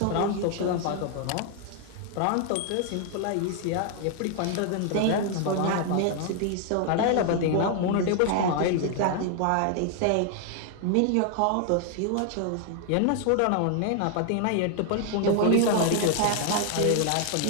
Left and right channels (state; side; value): different; both; correlation 0.00